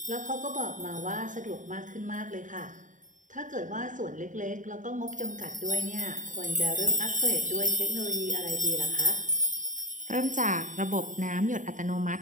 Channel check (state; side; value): late; left; 0.37 ms